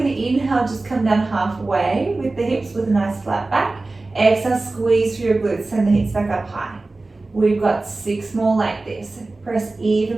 going to inhale, just come down halfway with the hips with a nice flat back. Exhale, squeeze through your glutes, send the hips back up high. We've got 6 more like this. Press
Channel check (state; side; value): quieter; left; 3.3 dB